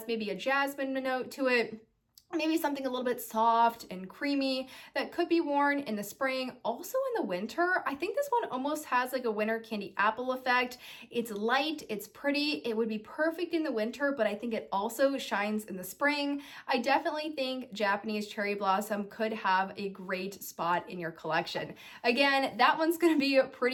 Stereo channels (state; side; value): identical; both; correlation 1.00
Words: maybe a jasmine note to it, maybe something a little bit soft and creamy that could be worn in the spring, also in the winter. I think this one almost has like a winter candy apple effect. It's light, it's pretty, it would be perfect in the winter, but I think it also shines in the spring. I definitely think Japanese Cherry Blossom could have a great spot in your collection. Again, that one's gonna be